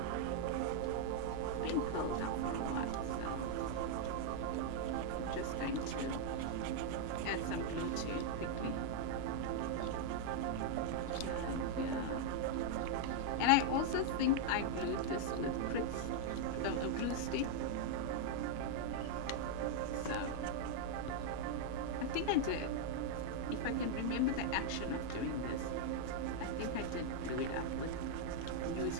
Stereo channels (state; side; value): different; both; correlation 0.00